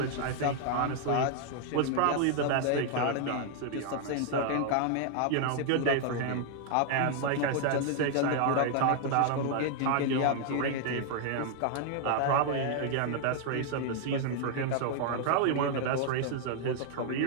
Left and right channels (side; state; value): both; different; correlation 0.00